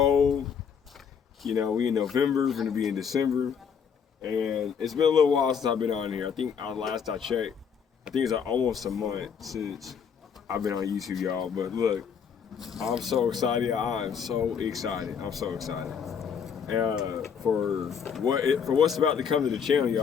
We in November. We're gonna be in December, and it's been a little while since I've been on here. I think last I checked, I think it's almost a month since I've been on YouTube, y'all. But look, I'm so excited. I'm so excited. I'm so excited. For what's about to come to the channel,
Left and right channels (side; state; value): right; quieter; 7.0 dB